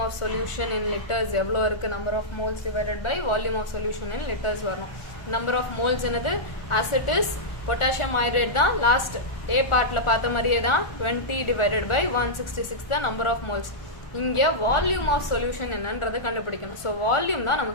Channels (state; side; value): late; right; 1.4 ms